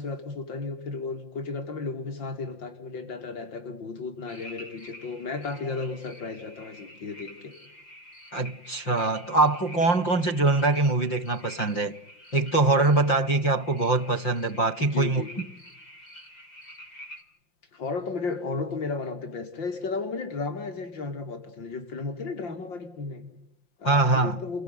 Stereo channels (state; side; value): late; right; 5.8 ms